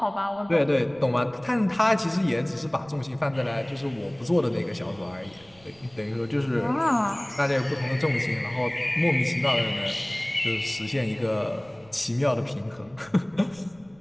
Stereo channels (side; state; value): right; noise; rumble, 27 dB below the sound